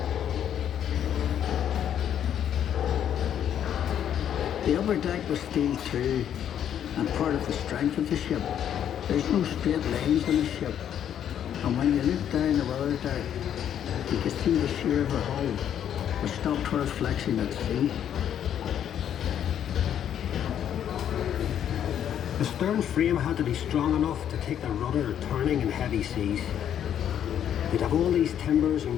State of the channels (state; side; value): quieter; right; 9.7 dB